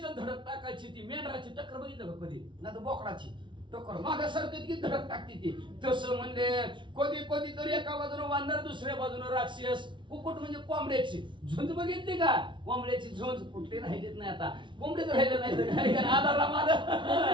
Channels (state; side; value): late; left; 0.24 ms